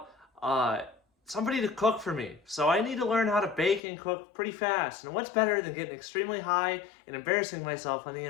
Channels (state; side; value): drops out; right; at 3.8 s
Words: somebody to cook for me. So I need to learn how to bake and cook pretty fast. And what's better than getting extremely high and embarrassing myself on the